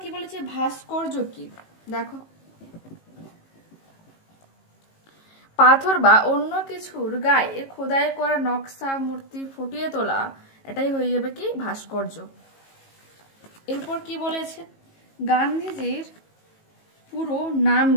কি বলেছে, ভাস্কর্য কি? দেখো, পাথর বা অন্য কিছুর গায়ে খোদাই করা নকশা মূর্তি ফুটিয়ে তোলা, এটাই হয়ে যাবে কি ভাস্কর্য। এরপর কি বলেছে, গান্ধীজির পুরো নাম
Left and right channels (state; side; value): late; right; 18 ms